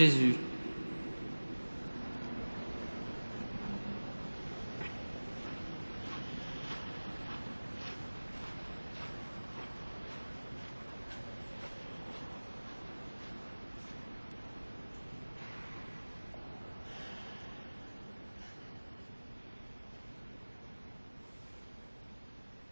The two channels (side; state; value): both; inverted; correlation -1.00